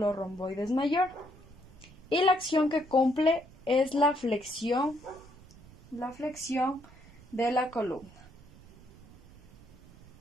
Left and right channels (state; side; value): noise; right; rumble, 22 dB below the sound